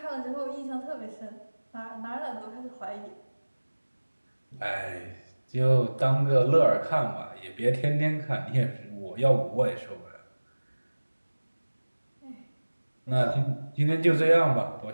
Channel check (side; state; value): both; inverted; correlation -1.00